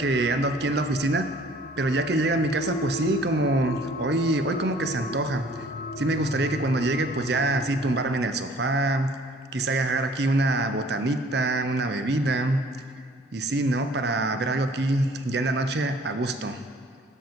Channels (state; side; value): normal; both; correlation 0.55